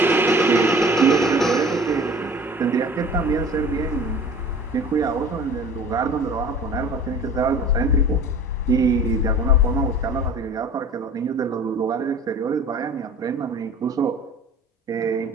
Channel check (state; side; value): normal; both; correlation 0.43